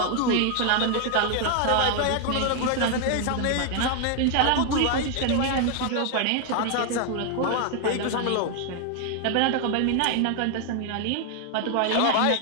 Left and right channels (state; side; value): different; both; correlation 0.00